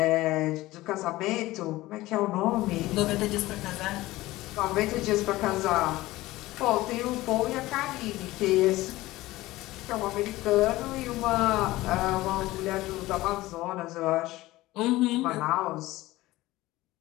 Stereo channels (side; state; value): right; quieter; 18.0 dB